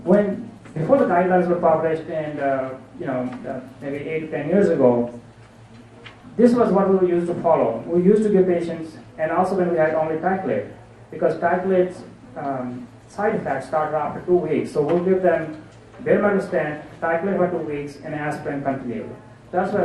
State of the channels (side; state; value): both; identical; correlation 1.00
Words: Before the guidelines were published, and maybe 8 to 10 years ago, this was what we used to follow. We used to give patients, and also when we had only Ticlate, because Ticlate's side effects start after 2 weeks. So we'll give them bare metal stent, titrate for 2 weeks, and aspirin continued. That's